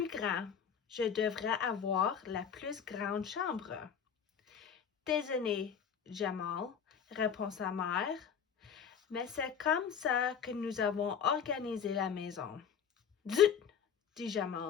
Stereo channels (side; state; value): right; quieter; 7.5 dB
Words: grand. Je devrais avoir la plus grande chambre. »« Désolé, Jamal, répond sa mère, mais c'est comme ça que nous avons organisé la maison. »« Zut !» dit